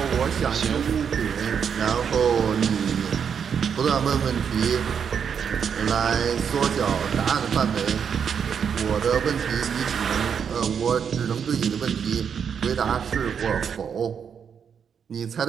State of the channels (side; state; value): left; quieter; 7.3 dB